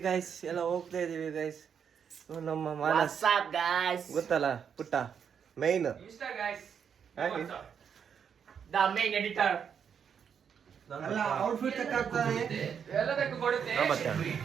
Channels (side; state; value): left; quieter; 7.5 dB